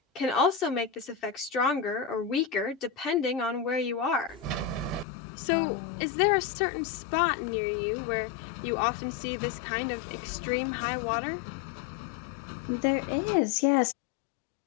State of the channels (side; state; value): right; drops out; at 5.1 s